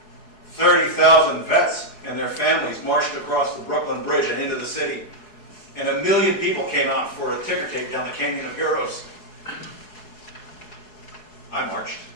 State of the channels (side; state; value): right; late; 4.7 ms